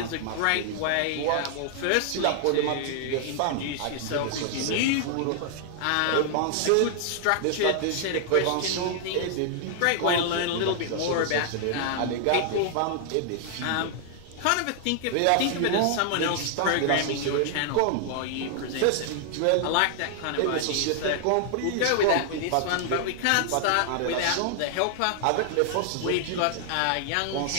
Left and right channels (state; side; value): different; both; correlation 0.00